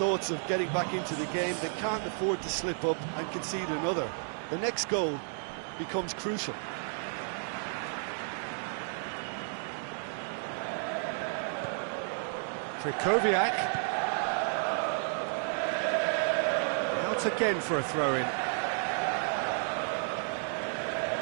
of getting back into the game, they can't afford to slip up and concede another. The next goal becomes crucial. Krychowiak. Out again for a throw-in.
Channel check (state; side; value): silent; left; 55 dB below the other